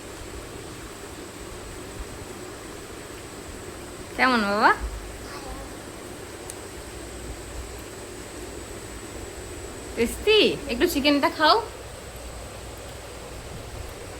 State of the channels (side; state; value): both; identical; correlation 1.00